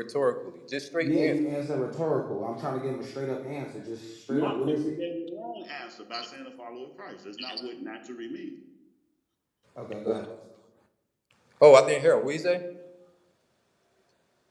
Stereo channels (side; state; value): both; identical; correlation 1.00